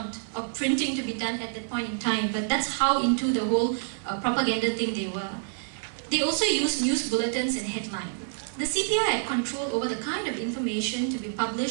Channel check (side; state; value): left; silent; 59 dB below the other